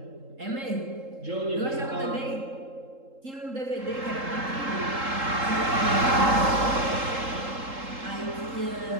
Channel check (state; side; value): late; left; 3.8 ms